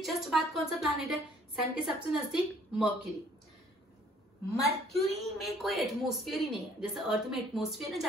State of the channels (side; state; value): both; normal; correlation 0.59